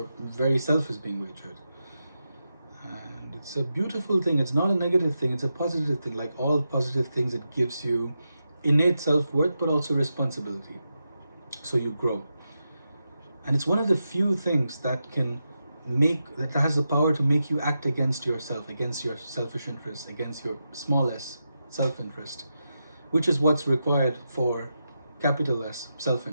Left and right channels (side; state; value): both; inverted; correlation -0.88